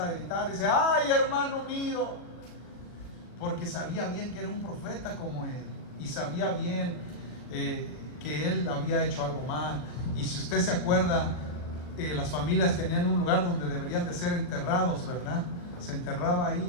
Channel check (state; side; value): late; right; 40 ms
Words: a gritar, dice, ay, hermano mío, porque sabía bien que era un profeta como él, y sabía bien que él había hecho algo mal. Y si usted se acuerda, las familias tenían un lugar donde deberían de ser enterrados, ¿verdad? Se enterraba